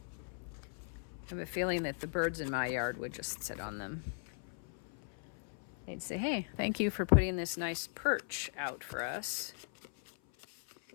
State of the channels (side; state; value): right; silent; 52 dB below the other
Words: I have a feeling that the birds in my yard would just sit on them. They'd say, hey, thank you for putting this nice perch out for us.